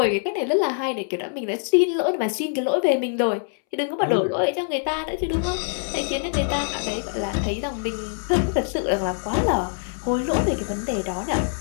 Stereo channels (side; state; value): right; silent; 63 dB below the other